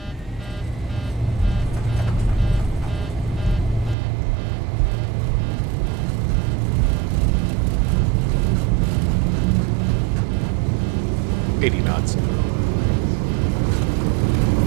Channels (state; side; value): drops out; left; at 4.0 s